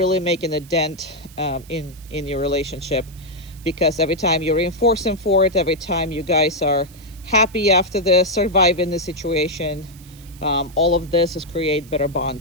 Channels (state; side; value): noise; right; hiss, 23 dB below the sound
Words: making a dent in your relationship, because every time you reinforce him for it, every time you guys are happy after this, surviving the situation, all of this is create better